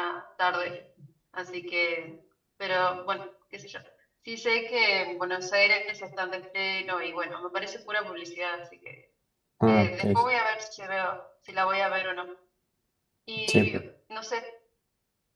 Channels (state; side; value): identical; both; correlation 1.00